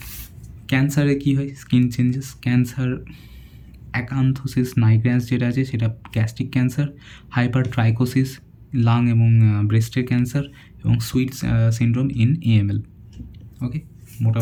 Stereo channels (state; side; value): identical; both; correlation 1.00